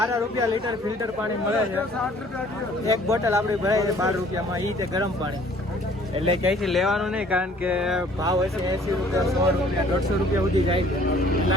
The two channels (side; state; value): both; normal; correlation 0.55